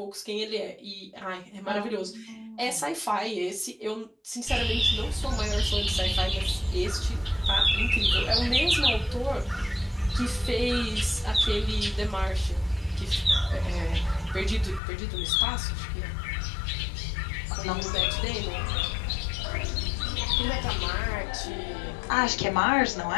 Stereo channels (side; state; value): right; drops out; at 14.8 s